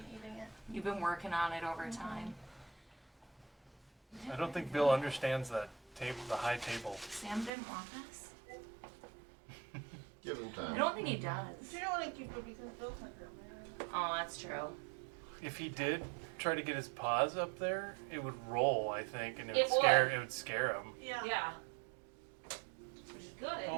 eating it. You've been working on it over time. I don't think Bill understands that table, the high table. Sam didn't want this. Give him I time. don't think he does. You don't want to keep it because Bill's not here, man. Oh, that's true. If he did try to get his paws up there, it would roll, I think, and It it would. would scare him. Yeah. Yeah. Which is good.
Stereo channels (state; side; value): drops out; left; at 7.5 s